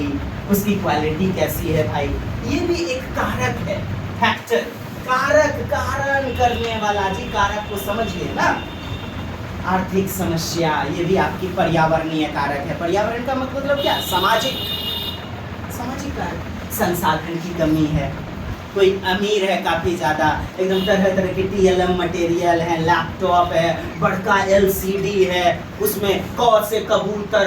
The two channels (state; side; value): identical; both; correlation 1.00